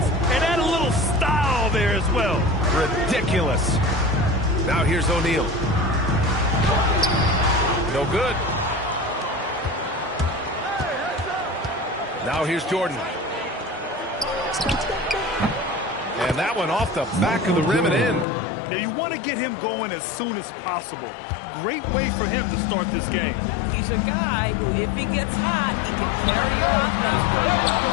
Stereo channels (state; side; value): drops out; right; at 18.2 s